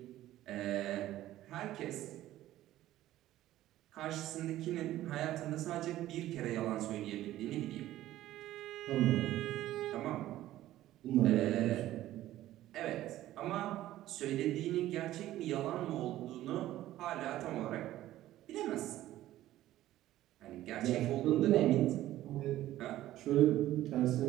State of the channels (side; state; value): left; quieter; 14.3 dB